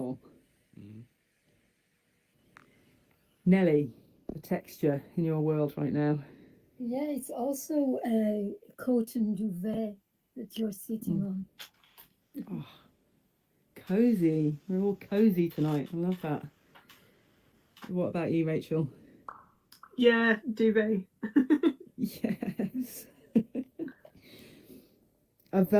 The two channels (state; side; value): identical; both; correlation 1.00